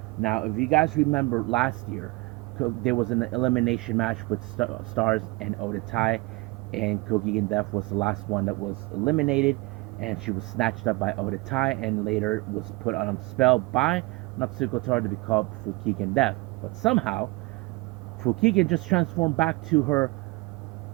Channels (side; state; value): left; quieter; 23.5 dB